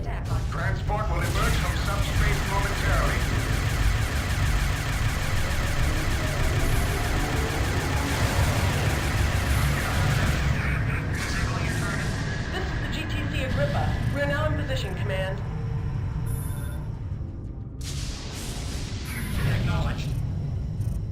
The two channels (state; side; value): identical; both; correlation 1.00